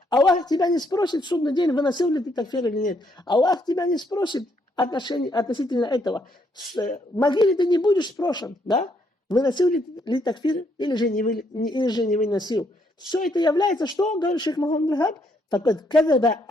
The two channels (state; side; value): normal; both; correlation 0.72